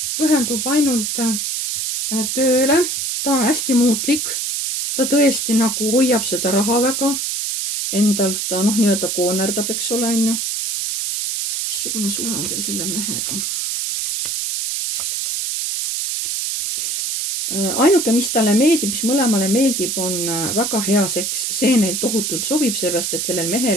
pühendub ainult tööle, ta on hästi muutlik, ta tõesti nagu hoiab seda raha väga endal, ta noh, nii-öelda koonerdab, eks ole, on ju. missugune suhe on teil selle mehega? ainuke, mis talle meeldib, mis mõlemale meeldib, on väga hea seks, see neil tohutult sobib, sellepärast et sellel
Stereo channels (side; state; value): right; noise; hiss, 1 dB below the sound